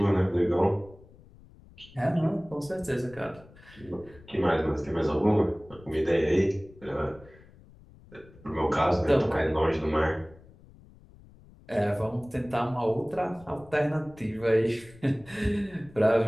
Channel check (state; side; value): noise; left; rumble, 23 dB below the sound